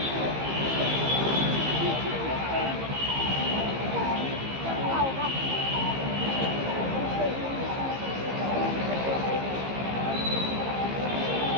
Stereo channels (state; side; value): late; left; 15 ms